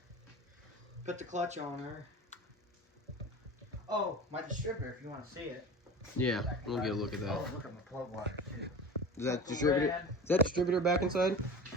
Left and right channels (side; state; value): both; normal; correlation 0.34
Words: put the clutch on her. Oh, my distributor, if you want to see it. Yeah, we'll get a look at that. Oh, look at my plug wire, too. Is that distributor? Is that distributor back inside?